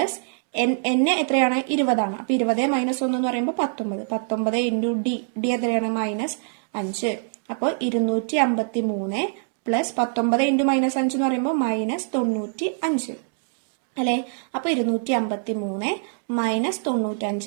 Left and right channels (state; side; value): silent; left; digital silence